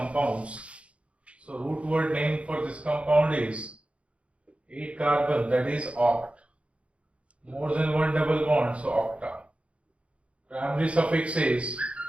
So root word name for this compound is 8 carbon, that is oct. More than one double bond, so octa. Primary suffix is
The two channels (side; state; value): left; late; 0.061 ms